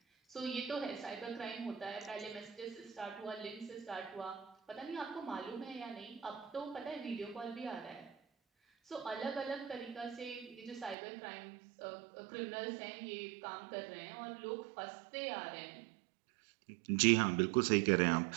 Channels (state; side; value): drops out; left; at 11.0 s